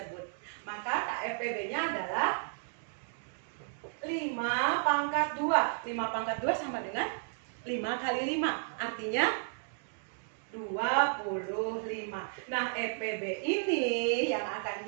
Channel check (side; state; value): left; silent; digital silence